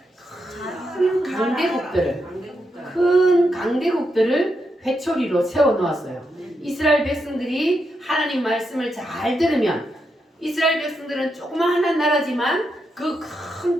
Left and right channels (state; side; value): normal; both; correlation 0.83